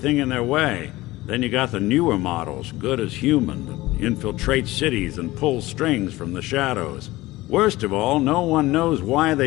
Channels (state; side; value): quieter; right; 18.5 dB